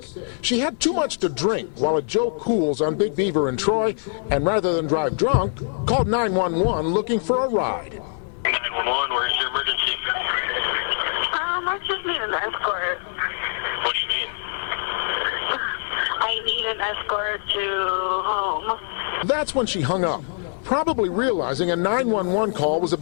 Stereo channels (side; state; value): right; silent; digital silence